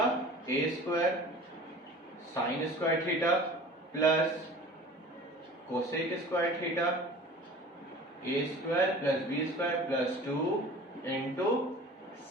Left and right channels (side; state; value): both; normal; correlation 0.42